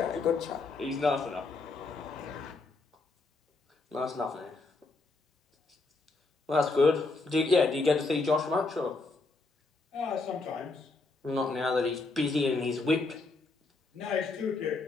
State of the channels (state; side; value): quieter; right; 3.6 dB